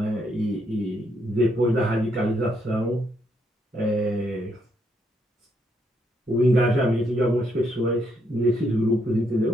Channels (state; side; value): normal; both; correlation 0.75